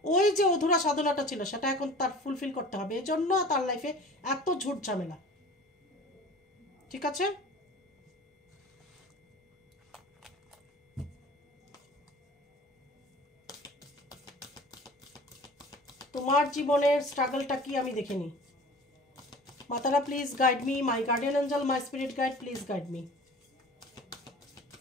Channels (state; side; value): normal; both; correlation 0.42